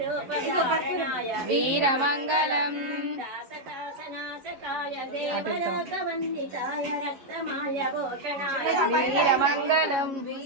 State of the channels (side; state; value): left; late; 11 ms